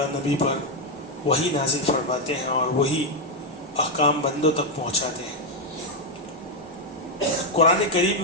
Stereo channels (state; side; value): normal; both; correlation 0.03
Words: نبی پر وہی نازل فرماتے ہیں اور وہی احکام بندوں تک پہنچاتے ہیں. قرآن کریم